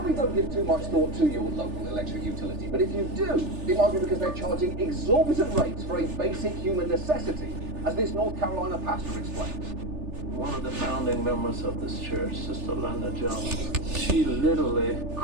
don't give too much thought to your local electric utility, but if you do, it might be because they're charging exorbitant rates for a basic human necessity, as this North Carolina pastor explains. One of the founding members of this church, Sister Linda Jones, she literally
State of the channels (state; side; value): late; left; 3.4 ms